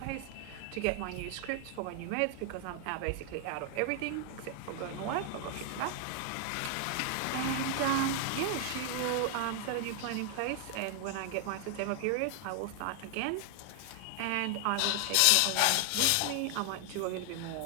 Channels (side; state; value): both; different; correlation 0.00